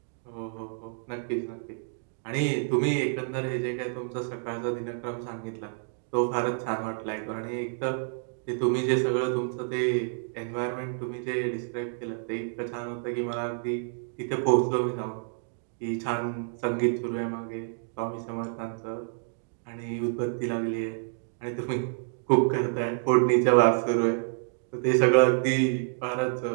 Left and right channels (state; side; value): silent; left; digital silence